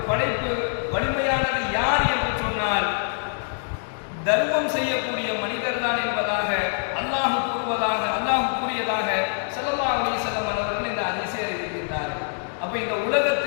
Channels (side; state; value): right; silent; 62 dB below the other